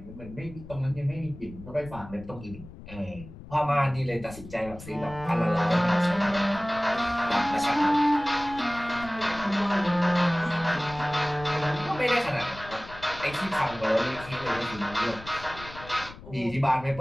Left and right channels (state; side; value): noise; left; rumble, 16 dB below the sound